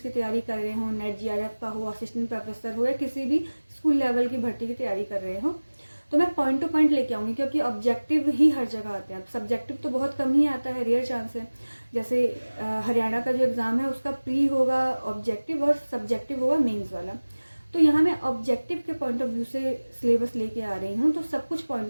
की तैयारी कर रहे हो, नेट GRF का हो, असिस्टेंट प्रोफेसर हो, या किसी भी स्कूल लेवल की भर्ती की तैयारी कर रहे हो, तो मैं पॉइंट टू पॉइंट लेके आऊंगी। क्योंकि ऑब्जेक्टिव ही हर जगह आते हैं, सब्जेक्टिव तो बहुत कम ही आता है, रेयर चांस है। जैसे हरियाणा का जो एग्जाम है उसका प्री होगा ऑब्जेक्टिव और सब्जेक्टिव होगा मेंस वाला। तो यहाँ मैं ऑब्जेक्टिव के पॉइंट ऑफ व्यू से सिलेबस लेके आ रही हूँ, तो सब कुछ पॉइंट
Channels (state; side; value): inverted; both; correlation -1.00